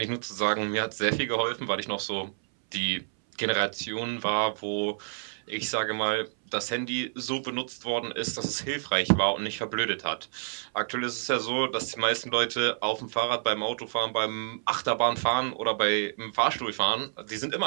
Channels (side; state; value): left; silent; 59 dB below the other